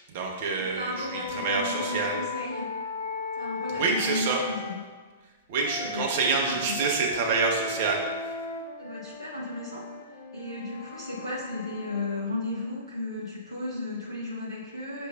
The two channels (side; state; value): both; inverted; correlation -0.33